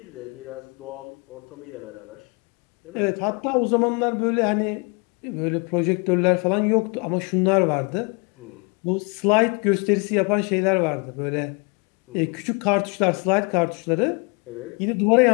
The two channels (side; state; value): right; quieter; 32.4 dB